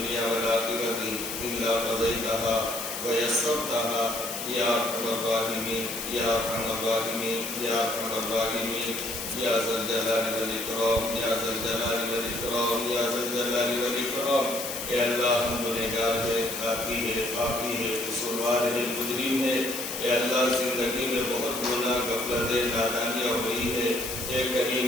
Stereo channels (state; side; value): noise; left; hiss, 6 dB below the sound